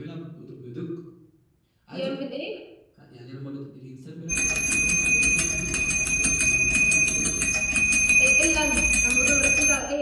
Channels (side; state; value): both; identical; correlation 1.00